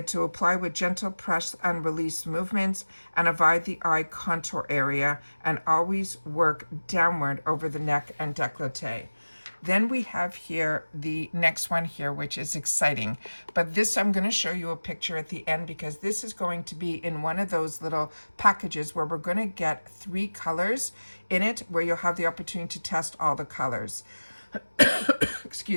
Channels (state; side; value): inverted; both; correlation -1.00